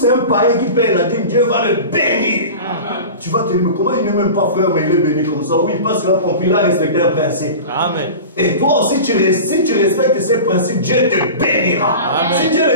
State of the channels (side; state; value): both; inverted; correlation -0.33